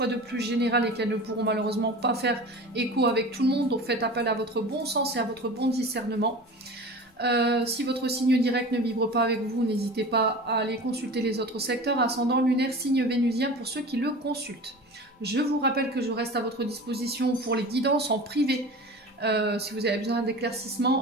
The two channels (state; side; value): normal; both; correlation 0.36